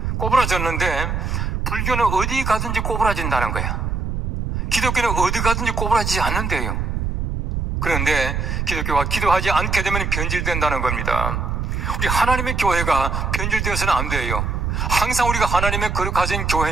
꼬부라졌는데 불교는 어디 가든지 꼬부라진다는 거야. 기독교는 어디 가든지 꼬부라지지 않는데요. 그런데 기독교가 기도하지 않게 되면 변질된다는 겁니다. 우리 하나님의 교회가 변질되어서는 안 돼요. 항상 우리가 하나님의 거룩하신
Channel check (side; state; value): right; noise; rumble, 1 dB below the sound